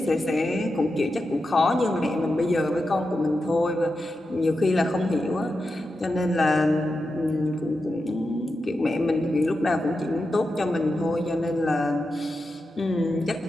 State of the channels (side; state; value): both; normal; correlation 0.90